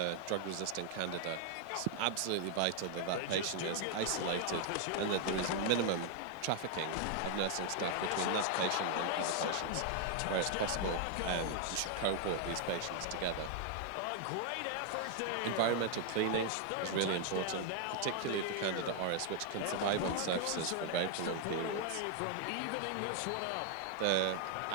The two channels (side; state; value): both; different; correlation 0.00